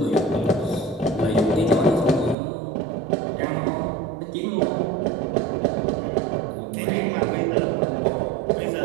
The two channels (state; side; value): drops out; left; at 2.4 s